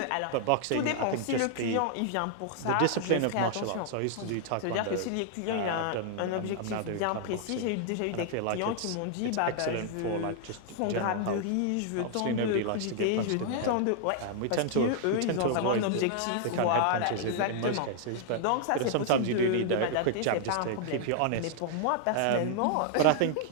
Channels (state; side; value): different; both; correlation 0.00